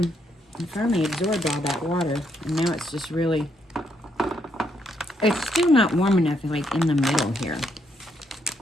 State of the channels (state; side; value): normal; both; correlation 0.75